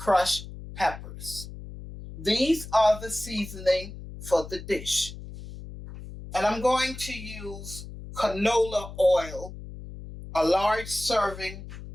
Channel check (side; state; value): left; noise; hum, 12 dB below the sound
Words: peppers. These are the seasoning for the dish. And I'm going to use canola oil, a large serving